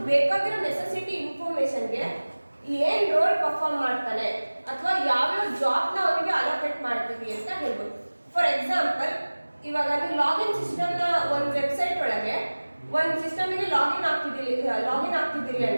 ಬೇಕಾಗಿರೋ necessity ಇನ್ಫಾರ್ಮೇಶನ್ಗೆ ಏನ್ ರೋಲ್ ಪರ್ಫಾರ್ಮ್ ಮಾಡ್ತಾನೆ ಅಥವಾ ಯಾವ್ಯಾವ ಜಾಬ್ನ ಅವನಿಗೆ ಅಲೋಕೇಟ್ ಮಾಡ್ತೀವಿ ಅಂತ ಹೇಳ್ಬೋದು. ಫಾರ್ ಎಕ್ಸಾಂಪಲ್, ಇವಾಗ ನೀವು ಲಾಗಿನ್ ಸಿಸ್ಟಮ್ ನ ಒಂದು ವೆಬ್ಸೈಟ್ ಒಳಗೆ ಒಂದು ಸಿಸ್ಟಮ್ಗೆ ಲಾಗಿನ್ ಆಗ್ತಿದ್ದೀರಿ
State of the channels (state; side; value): inverted; both; correlation -1.00